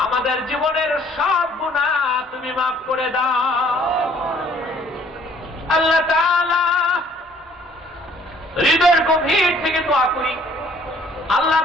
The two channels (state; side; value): normal; both; correlation 0.59